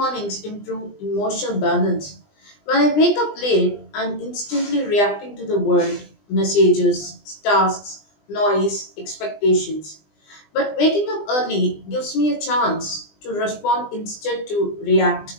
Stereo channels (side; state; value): right; late; 20 ms